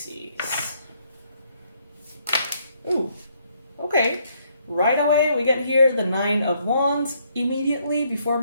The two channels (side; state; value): both; inverted; correlation -0.70